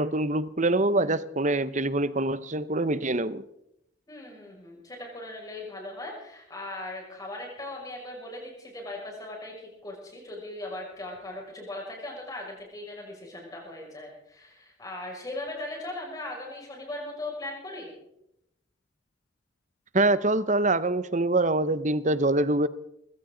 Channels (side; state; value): both; normal; correlation 0.21